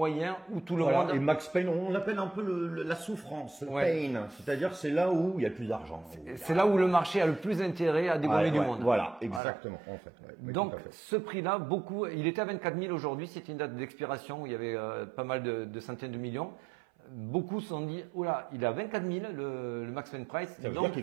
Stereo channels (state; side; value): drops out; left; at 9.4 s